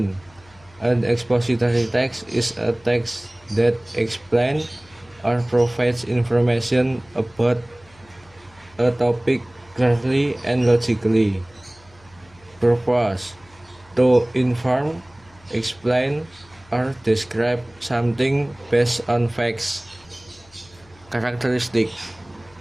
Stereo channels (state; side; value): noise; left; hum, 28 dB below the sound